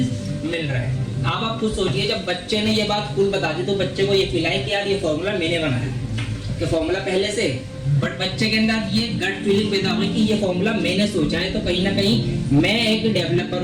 मिल रहा है। अब आप खुद सोचिए, जब बच्चे ने ये बात खुद बता दी तो बच्चे को ये फील आए कि यार ये फॉर्मूला मैंने बनाया, कि फॉर्मूला पहले से, बट बच्चे के अंदर ये गट फीलिंग पैदा हुई कि ये फॉर्मूला मैंने सोचा है, तो कहीं ना कहीं मैं एक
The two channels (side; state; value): both; identical; correlation 1.00